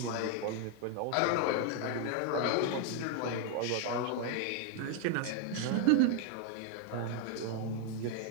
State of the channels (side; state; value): both; different; correlation 0.00